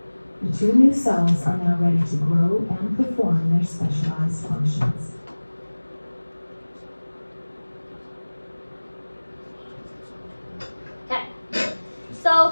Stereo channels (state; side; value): inverted; both; correlation -1.00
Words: The two new cells are now ready to grow and perform their specialized functions. Okay. So a